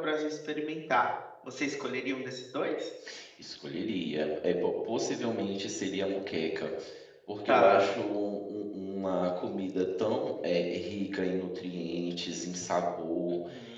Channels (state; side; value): identical; both; correlation 1.00